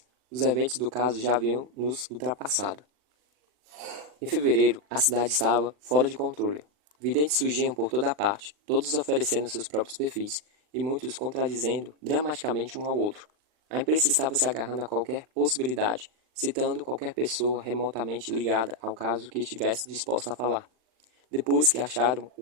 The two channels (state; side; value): late; left; 39 ms